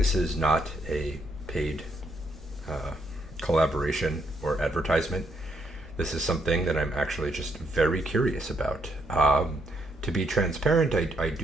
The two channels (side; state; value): both; normal; correlation 0.75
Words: is not a paid collaboration or advertisement. This is something that I'm actually just very curious about. To be transparent, I